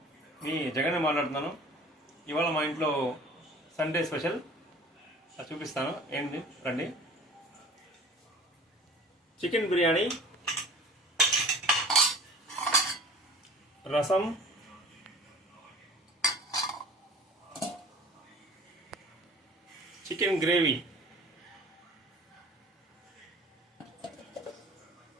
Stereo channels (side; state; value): both; normal; correlation 0.45